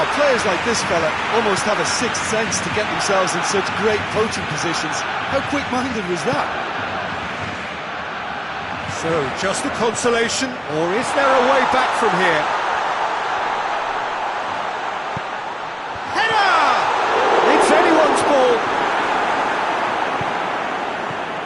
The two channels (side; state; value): both; identical; correlation 1.00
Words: players like this fella almost have a sixth sense to get themselves in such great poaching positions. How quick-minded was that? So, just a consolation, or is there a way back from here? Header! It's anyone's ball.